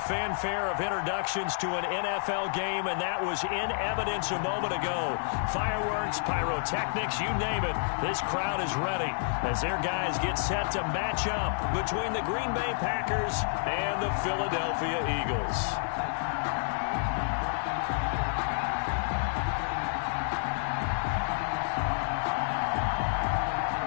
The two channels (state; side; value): silent; right; digital silence